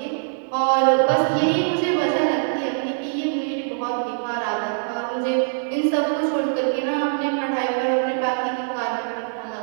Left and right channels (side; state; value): left; silent; digital silence